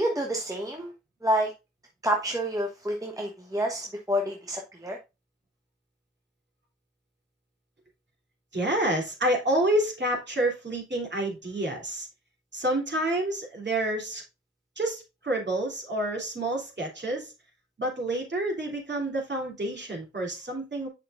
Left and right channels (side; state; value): both; normal; correlation 0.46